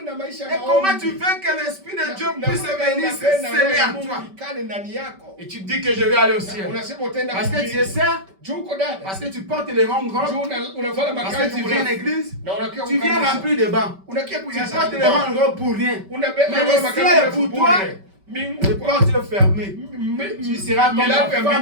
Et comment tu veux que l'Esprit de Dieu puisse venir se sceller en toi? Et tu dis que je vais aller au ciel. Parce que tu es ça. Parce que tu portes les rangs grands. Parce que tu viens à l'église. Tu viens remplir de bancs. Tu portes les rangs grands pour rien. Mais le ciel est pour toi. Les portes fermées. Tu seras comme la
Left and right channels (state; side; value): late; left; 5.2 ms